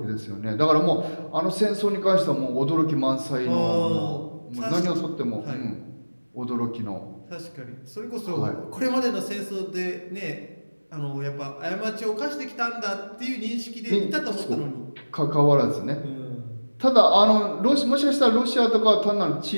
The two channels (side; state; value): both; inverted; correlation -1.00